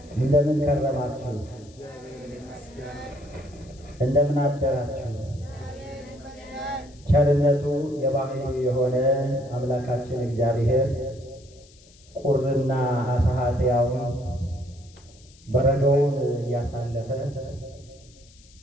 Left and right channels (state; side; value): noise; left; hiss, 26 dB below the sound